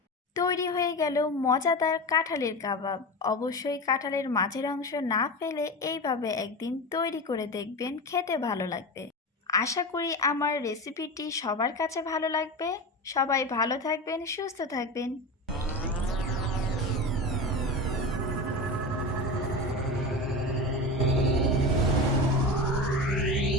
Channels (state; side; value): normal; both; correlation 0.25